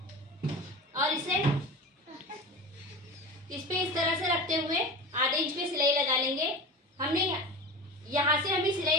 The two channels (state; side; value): normal; both; correlation 0.30